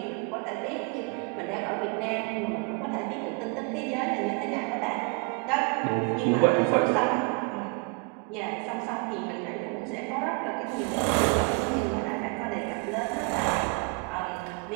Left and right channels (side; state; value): left; quieter; 33.6 dB